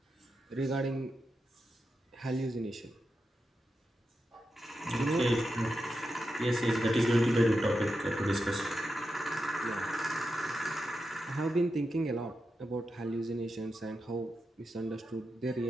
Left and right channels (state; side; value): normal; both; correlation 0.88